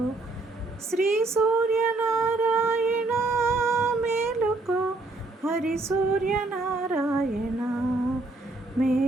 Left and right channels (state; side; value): quieter; left; 3.2 dB